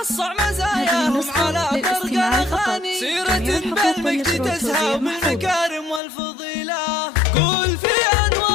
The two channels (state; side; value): drops out; right; at 6.0 s